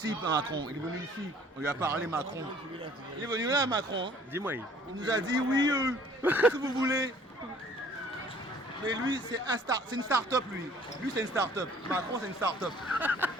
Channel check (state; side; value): normal; both; correlation 0.55